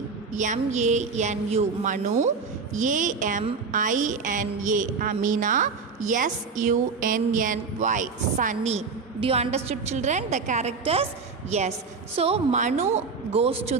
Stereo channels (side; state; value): left; quieter; 4.9 dB